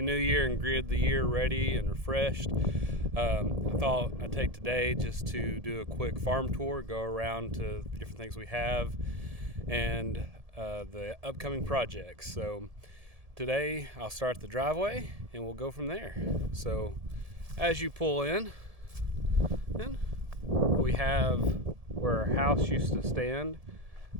new year and greeted the year ready and refreshed. I thought I'd take today just to do a quick farm tour, go around to the different things we have and the upcoming projects. So today I'll start the driveway and we'll go from there. So as you pull in, we have where our house used to stand.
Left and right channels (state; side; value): late; left; 1.7 ms